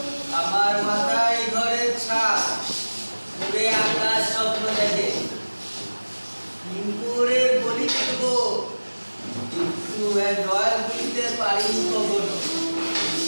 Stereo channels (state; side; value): inverted; both; correlation -1.00